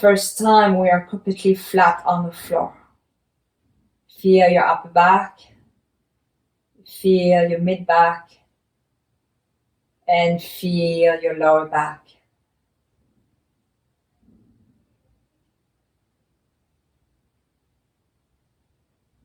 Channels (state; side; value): identical; both; correlation 1.00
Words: time we are completely flat on the floor. Feel your upper back. Feel your mid back. And feel your lower back.